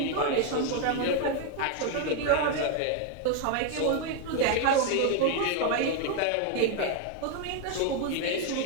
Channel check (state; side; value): different; both; correlation 0.01